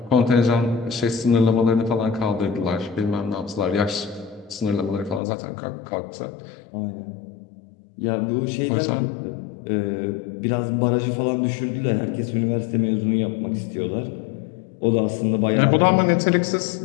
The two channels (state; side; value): drops out; right; at 5.2 s